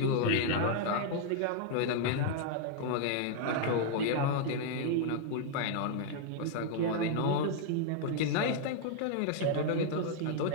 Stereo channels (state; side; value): different; both; correlation -0.01